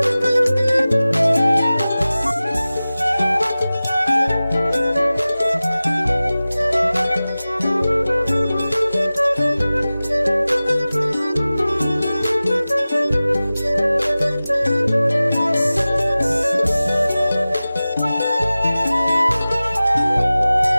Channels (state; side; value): inverted; both; correlation -0.97